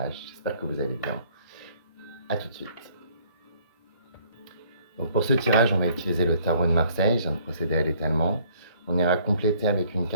J'espère que vous allez bien. A tout de suite. Donc pour ce tirage, on va utiliser le tarot de Marseille. Je viens de procéder à l'étalement. On ira compléter avec une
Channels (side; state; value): both; inverted; correlation -0.61